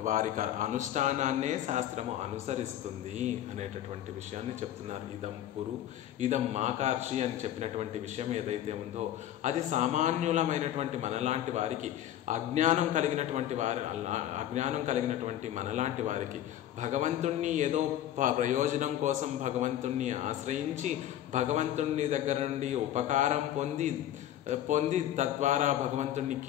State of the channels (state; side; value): quieter; right; 12.1 dB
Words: వారి అనుష్ఠానాన్నే శాస్త్రము అనుసరిస్తుంది అనేటటువంటి విషయాన్ని చెప్తున్నారు. ఇదం కురు ఇదం మాకార్షి అని చెప్పినటువంటి విషయం ఏదైతే ఉందో అది సామాన్యులమైనటువంటి మనలాంటి వారికి, అజ్ఞానం కలిగినటువంటి మనలాంటి వారికి భగవంతుణ్ణి ఏదో ప్రయోజనం కోసం భగవంతుణ్ణి ఆశ్రయించి భగవంతుని దగ్గర నుండి ఉపకారం పొంది తద్వారా